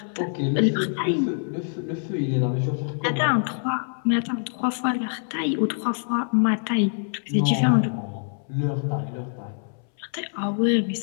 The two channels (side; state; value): right; silent; 62 dB below the other